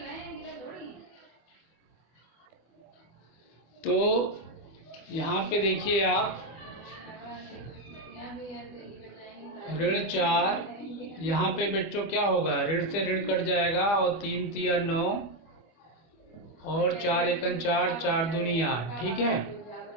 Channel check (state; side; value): late; right; 25 ms